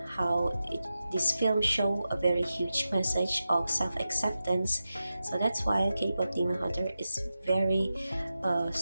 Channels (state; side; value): inverted; both; correlation -0.92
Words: how this film show a very huge message of self-acceptance. So that's why K-pop Demon Hunter is very